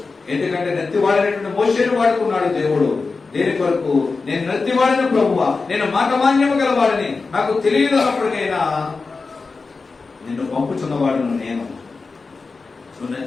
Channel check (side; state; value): right; quieter; 4.2 dB